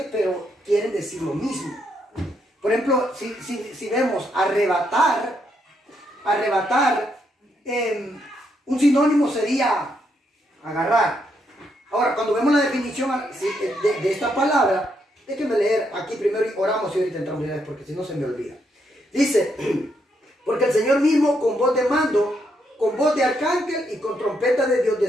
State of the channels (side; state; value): both; normal; correlation 0.77